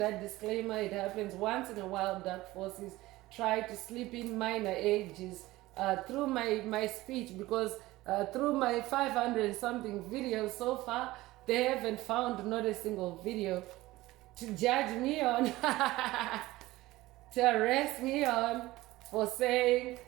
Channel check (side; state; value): left; quieter; 18.2 dB